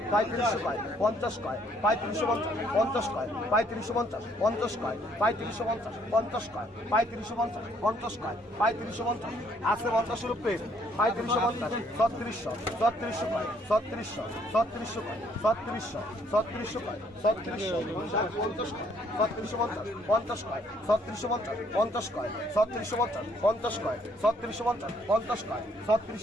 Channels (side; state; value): both; normal; correlation 0.66